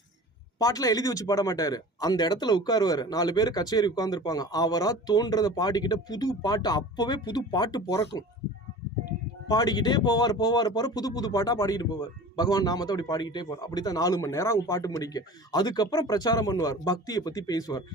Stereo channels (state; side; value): normal; both; correlation 0.39